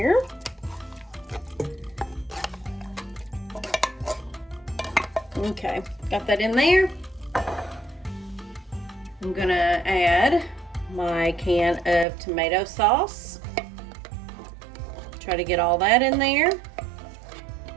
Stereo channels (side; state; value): left; drops out; at 12.1 s